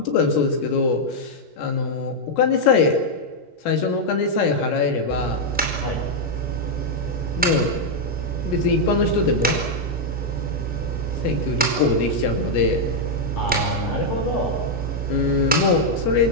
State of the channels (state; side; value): normal; both; correlation -0.02